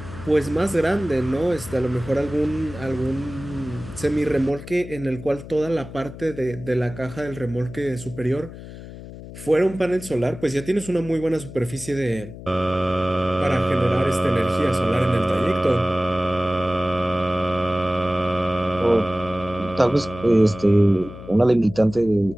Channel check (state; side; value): noise; left; hum, 14 dB below the sound